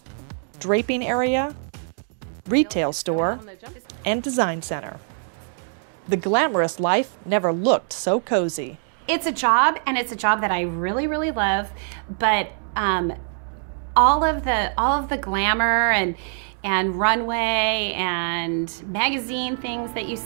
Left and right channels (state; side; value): silent; left; 63 dB below the other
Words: draping area, retail store, and design center. The glamorous life never looked so cozy. It's a job, and it's a job that I really, really love, but all of the glamour and runway and magazine things that you